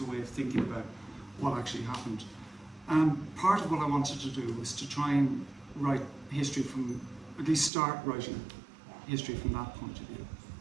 way of thinking about what actually happened. And part of what I wanted to do was to try and write history from, at least start writing history from that point of view.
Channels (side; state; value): left; drops out; at 7.7 s